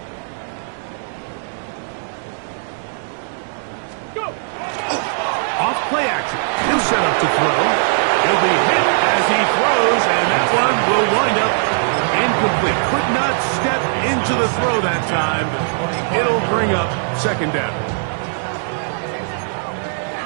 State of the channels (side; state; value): left; silent; digital silence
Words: Go. Off play action. He'll set up to throw. He'll be hit as he throws, and that one will wind up incomplete. Could not step into the throw that time. It'll bring up 2nd down.